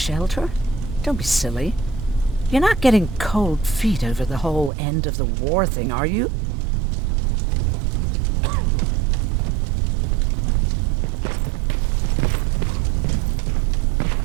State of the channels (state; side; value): drops out; left; at 4.7 s